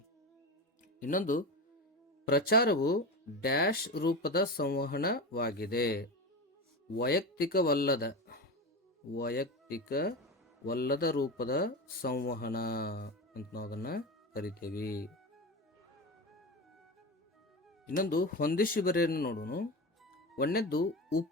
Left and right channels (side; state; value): both; normal; correlation 0.23